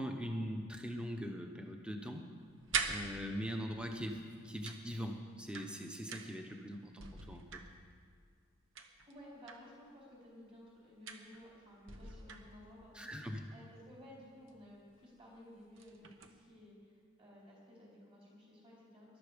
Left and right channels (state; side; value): normal; both; correlation 0.56